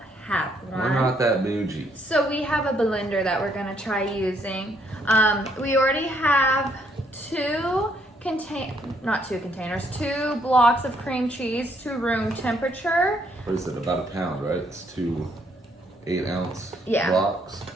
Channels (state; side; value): normal; both; correlation 0.70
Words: have one. We're not that bougie. So we have a blender that we're gonna try using. We already have two blocks of cream cheese to room temperature. What is it, about a pound, right? It's 2 8-ounce Yeah. blocks.